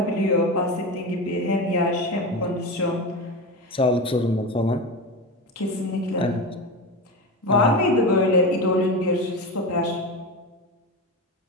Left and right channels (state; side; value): normal; both; correlation 0.22